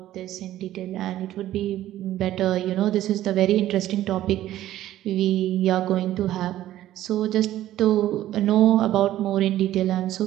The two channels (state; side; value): quieter; left; 13.6 dB